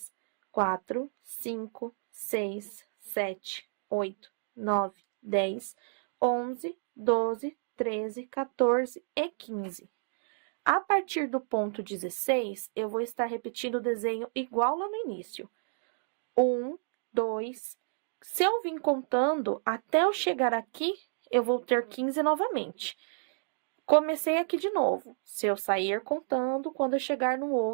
4, 5, 6, 7, 8, 9, 10, 11, 12, 13, 14 e 15. A partir do ponto 16, eu vou estar repetindo o desenho igual lá no início. 1, 2, Se eu vim contando, até eu chegar aqui, eu vou ter 15 novamente. Comecei aqui de novo. Se eu sair contando, quando eu chegar no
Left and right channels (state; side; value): silent; left; digital silence